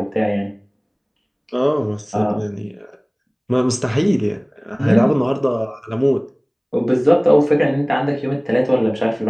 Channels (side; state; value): both; identical; correlation 1.00